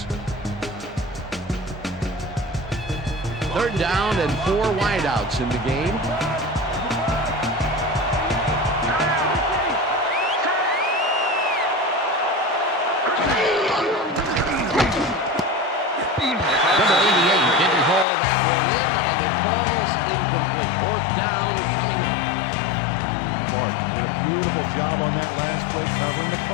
Third down and 4 wideouts in the game. Number 88 didn't haul that one in, and it falls incomplete. Fourth down coming up. Clark did a beautiful job on that last play covering the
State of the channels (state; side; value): drops out; right; at 18.1 s